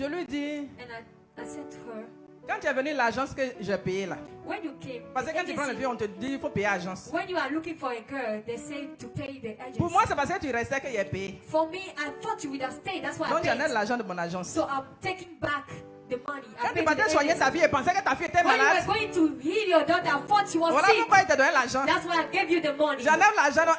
lui dis, and I said to her, quand tu es venu l'agence que j'ai payée là, when you came, parce que the quand tu prends le agency, billet, on te dit, il faut payer l'agence. when you are looking for a girl, they say to pay the agency. Pour moi, c'est parce que tu restais que j'ai payé. For me, I thought you would have stayed. That's why Donc, I j'en ai paid. l'argent de mon agence. So I'm taking back the money. I Quand tu paid partais the soigner agency. ta fille et pensais que ta fille était When you were malade, going to heal your daughter, I thought she was voilà sick. pourquoi il t'a donné l'argent. That's why I gave you the money. J'enlève l'argent. Donc,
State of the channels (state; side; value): identical; both; correlation 1.00